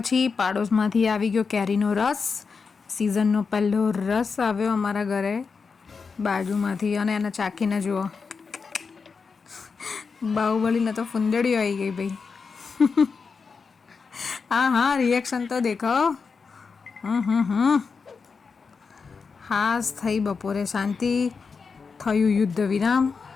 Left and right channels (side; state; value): right; quieter; 5.1 dB